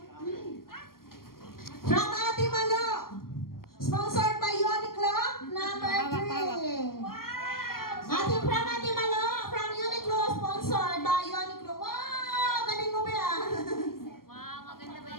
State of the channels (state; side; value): late; right; 0.92 ms